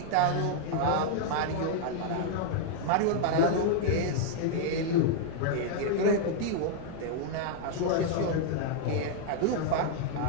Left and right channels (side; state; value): both; different; correlation 0.00